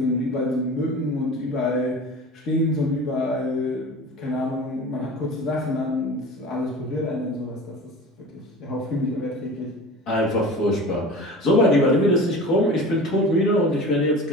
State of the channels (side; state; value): both; normal; correlation 0.36